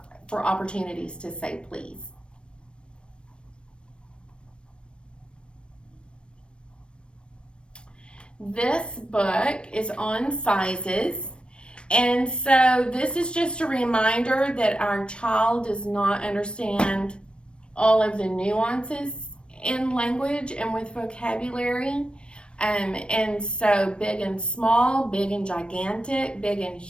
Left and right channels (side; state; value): right; late; 0.057 ms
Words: for opportunities to say please. This book is on sizes, and so this is just a reminder that our child does not understand all of the nuances in language and with vocabulary. And so big and small, big and gigantic, big and